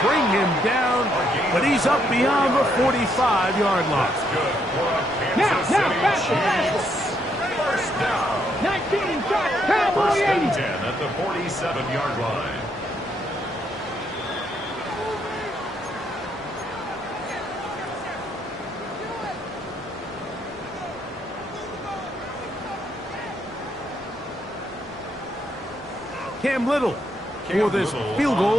bring him down, but he's up beyond the 45-yard line. Now, faster. 19 shot, Cowboy 80. 10 at the 47-yard line. Cam Little for this field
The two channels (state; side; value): normal; both; correlation 0.74